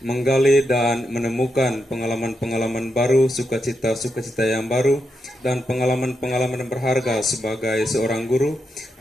menggali dan menemukan pengalaman-pengalaman baru, sukacita-sukacita yang baru, dan pengalaman-pengalaman berharga sebagai seorang guru,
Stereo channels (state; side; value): normal; both; correlation 0.84